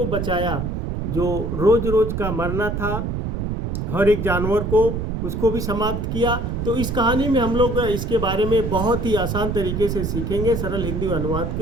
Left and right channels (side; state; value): right; noise; rumble, 2 dB below the sound